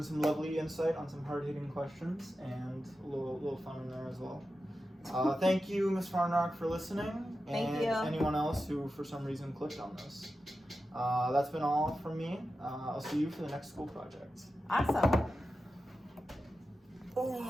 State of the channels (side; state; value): both; normal; correlation 0.91